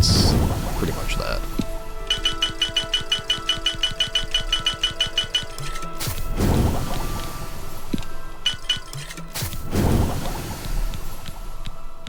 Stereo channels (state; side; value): identical; both; correlation 1.00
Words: pretty much that.